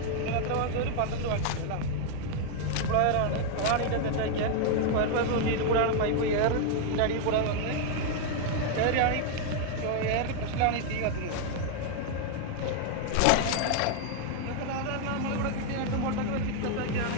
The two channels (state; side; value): different; both; correlation 0.00